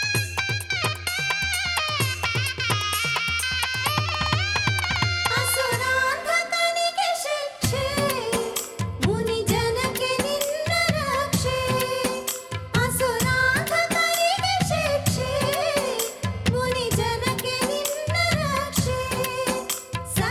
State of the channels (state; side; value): identical; both; correlation 1.00